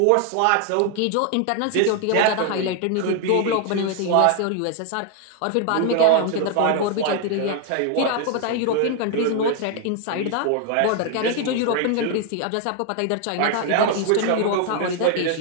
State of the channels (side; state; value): both; different; correlation 0.00